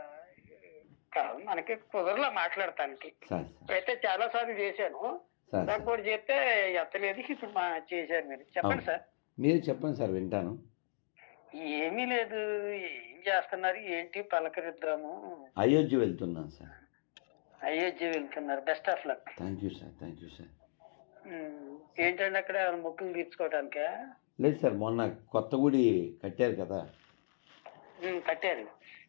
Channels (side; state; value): right; silent; digital silence